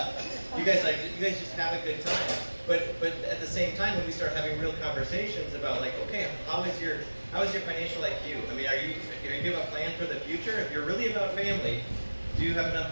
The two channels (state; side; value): inverted; both; correlation -1.00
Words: You guys just have a good time. But at the same time, when we start having real conversations about like, okay, how is your financial IQ? I mean, do you have a plan for the future? If you're really about family, do you have enough